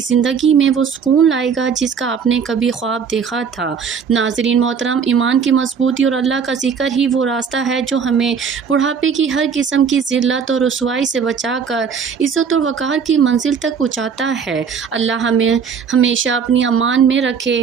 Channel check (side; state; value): left; quieter; 6.6 dB